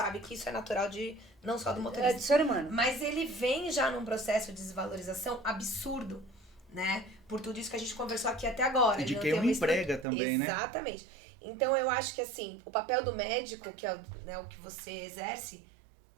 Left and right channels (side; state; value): left; drops out; at 10.1 s